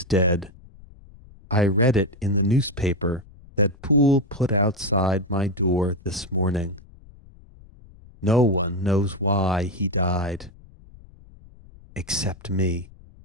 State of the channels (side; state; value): left; noise; rumble, 23 dB below the sound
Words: dead. I read it in the newspaper that Poole put outside my door this morning. No one knows why he died. Except me.